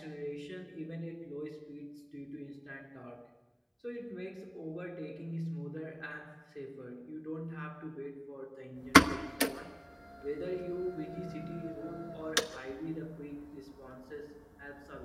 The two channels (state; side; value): identical; both; correlation 1.00